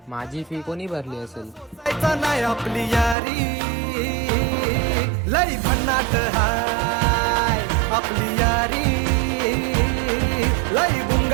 माझी फी कोणी भरली असेल? जायचं नाही आपली यारी लई भन्नाट हाय. आपली यारी लई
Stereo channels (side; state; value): left; drops out; at 3.2 s